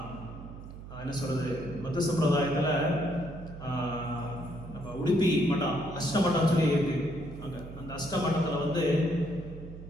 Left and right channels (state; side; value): noise; right; hum, 13 dB below the sound